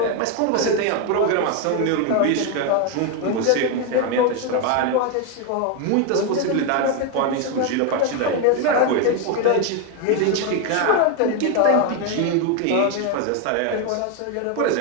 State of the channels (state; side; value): different; both; correlation 0.02